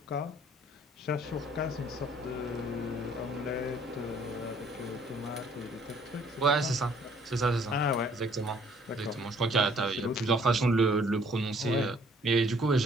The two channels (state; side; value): normal; both; correlation 0.60